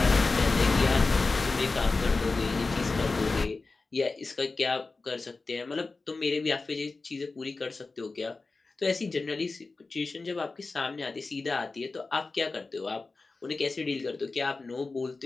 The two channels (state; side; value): quieter; right; 3.8 dB